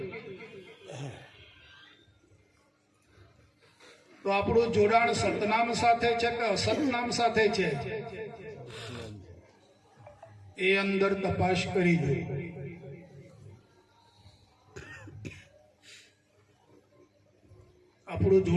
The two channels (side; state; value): both; identical; correlation 1.00